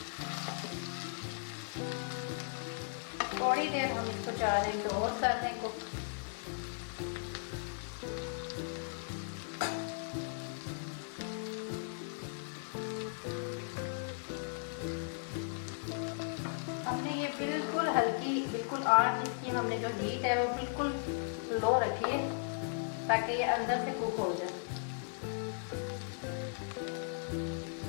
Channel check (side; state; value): right; silent; digital silence